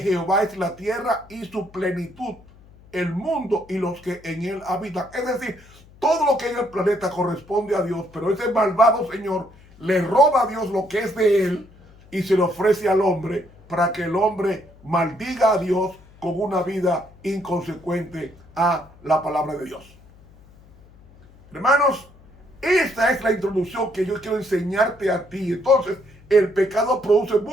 es la tierra y su plenitud, el mundo y los que en él habitan. Es decir, todo lo que hay en el planeta corresponde a Dios, pero ese malvado señor le roba a Dios lo que es de él y se lo ofrece al hombre para que el hombre maldiga a Dios con una vida inconsecuente a la palabra de Dios. Hermanos, esta es la introducción que yo quiero enseñarte a ti. Entonces, el pecado produce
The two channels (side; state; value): left; noise; hum, 25 dB below the sound